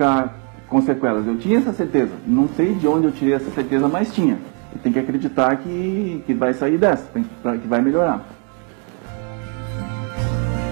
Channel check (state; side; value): quieter; left; 37.9 dB